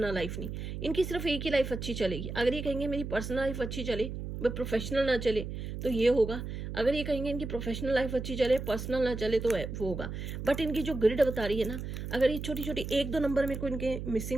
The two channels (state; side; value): noise; right; hum, 6 dB below the sound